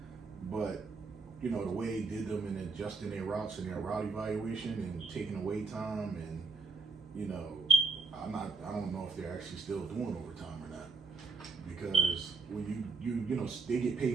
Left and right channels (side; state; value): left; quieter; 4.2 dB